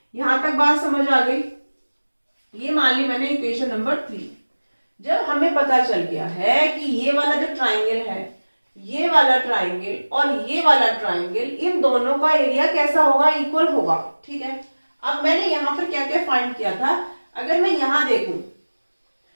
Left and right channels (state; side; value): inverted; both; correlation -1.00